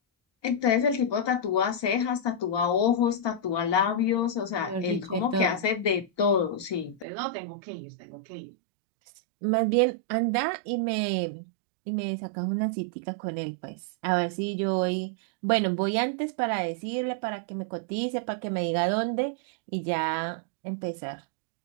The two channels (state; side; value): drops out; left; at 7.1 s